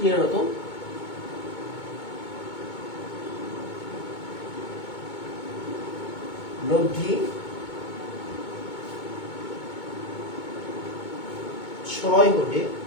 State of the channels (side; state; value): right; late; 2.2 ms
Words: লব্ধি 6 হলে